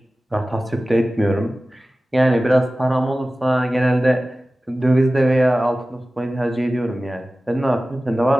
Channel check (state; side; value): normal; both; correlation 0.96